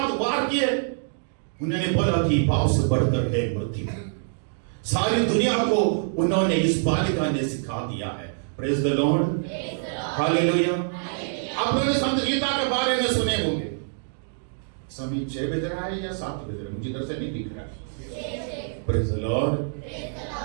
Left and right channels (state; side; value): silent; left; digital silence